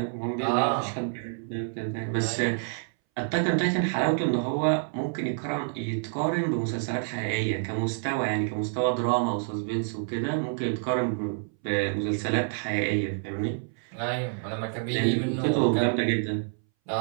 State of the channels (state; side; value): silent; left; 59 dB below the other